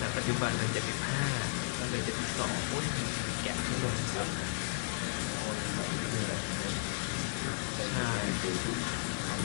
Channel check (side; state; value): right; silent; digital silence